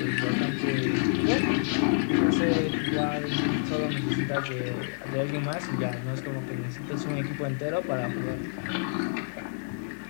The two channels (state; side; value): silent; right; digital silence